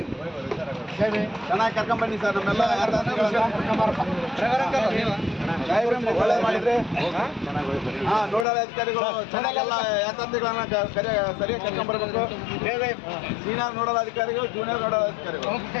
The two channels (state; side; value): drops out; right; at 8.5 s